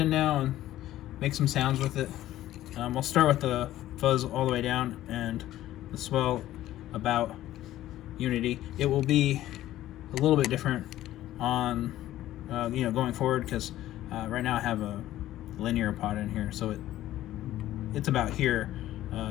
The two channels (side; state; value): right; quieter; 14.1 dB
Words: now and make some sounds with it. We'll start with the fuzz all the way down and the swell about Unity. It will be a little bit different on going forward, because right now I have a linear pot in here, so it's about here.